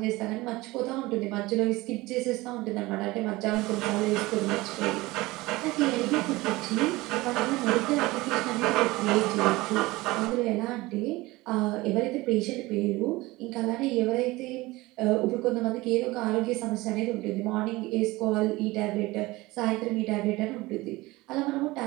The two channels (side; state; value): left; quieter; 20.5 dB